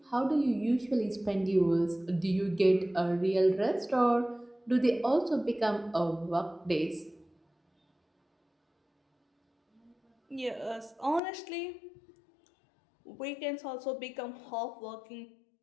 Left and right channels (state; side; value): drops out; right; at 11.2 s